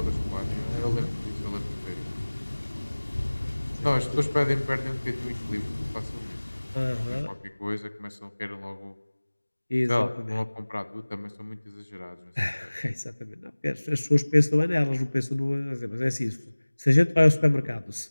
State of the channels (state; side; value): inverted; both; correlation -1.00